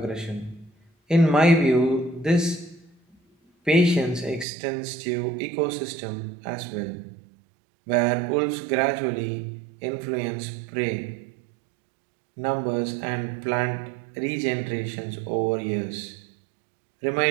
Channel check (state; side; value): drops out; left; at 4.5 s